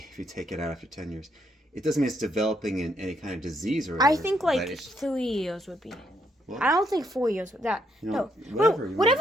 you take it out after 10 years. It doesn't mean it's developing in any kind of disease or whatever. I think but like it's- 3 years would be. Well, I don't think 4 years with that. You know, No, whatever you whatever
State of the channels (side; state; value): both; normal; correlation 0.75